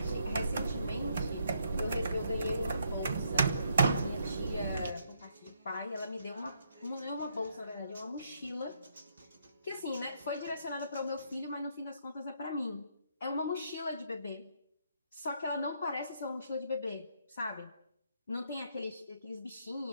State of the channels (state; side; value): inverted; both; correlation -0.73